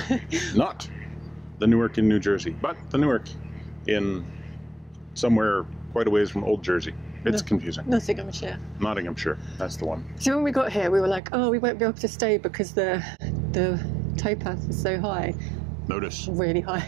not the Newark in New Jersey, but the Newark in somewhere quite a ways from Old Jersey. It's confusing. Nottinghamshire. Nottinghamshire. That's the one. So when we got here, we were like, oh, we won't be able to stay because the towpath is so high. Notice. Really high.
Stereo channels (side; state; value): left; drops out; at 11.2 s